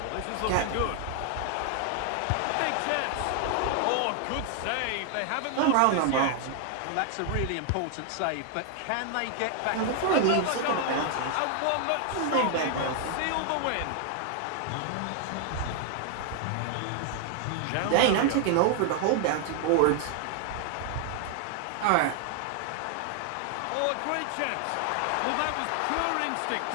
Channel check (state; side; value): different; both; correlation 0.00